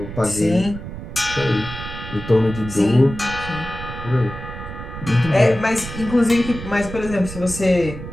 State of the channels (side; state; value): right; noise; rumble, 10 dB below the sound